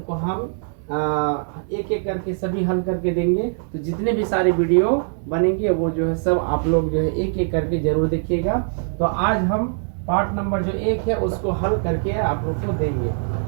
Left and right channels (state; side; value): silent; left; 64 dB below the other